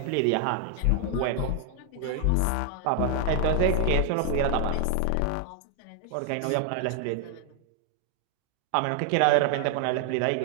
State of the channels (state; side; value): different; both; correlation 0.00